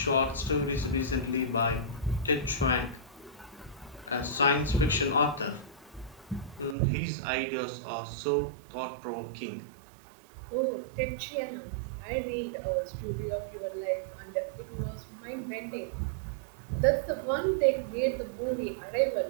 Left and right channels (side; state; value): left; drops out; at 6.8 s